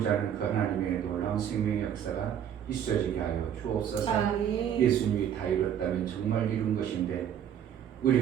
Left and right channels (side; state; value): left; quieter; 9.4 dB